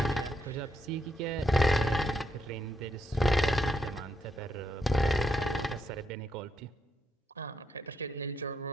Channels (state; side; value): normal; both; correlation 0.78